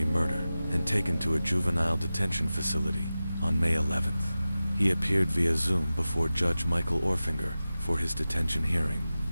murder and taken to a juvenile detention facility. On May 11th, he appeared via Zoom before Judge Michael Orfinger for his detention hearing.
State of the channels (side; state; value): both; inverted; correlation -0.95